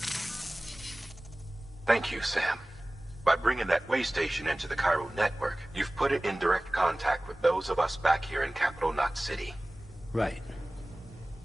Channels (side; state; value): both; normal; correlation 0.98